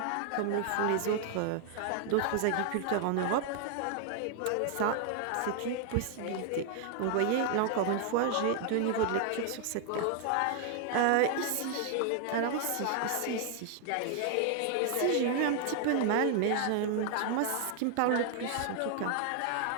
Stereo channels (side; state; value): both; different; correlation 0.00